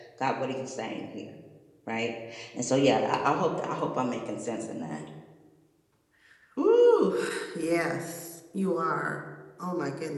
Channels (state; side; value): identical; both; correlation 1.00